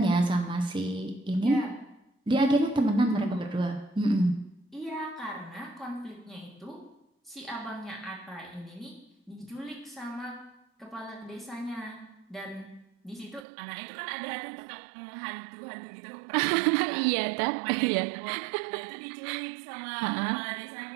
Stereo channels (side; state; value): left; drops out; at 13.5 s